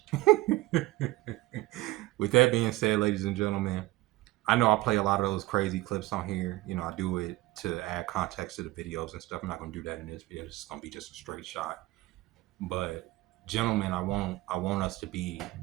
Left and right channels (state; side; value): quieter; left; 19.1 dB